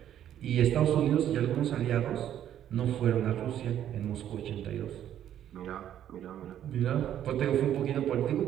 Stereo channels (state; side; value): quieter; left; 10.8 dB